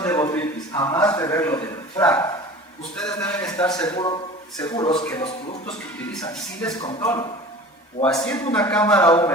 de botritis, a más de verlo del FRAC, ustedes deben estar seguros que los productos que utilizan sí les controlan. O haciendo una cámara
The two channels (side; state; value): both; normal; correlation 0.40